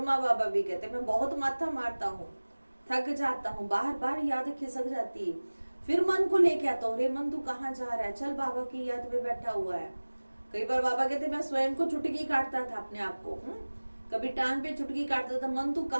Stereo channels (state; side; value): inverted; both; correlation -1.00